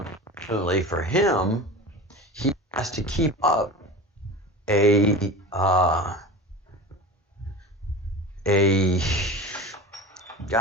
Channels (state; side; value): normal; both; correlation 0.33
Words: for him, he has to keep up a